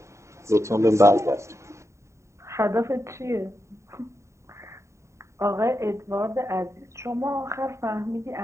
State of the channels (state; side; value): late; left; 0.14 ms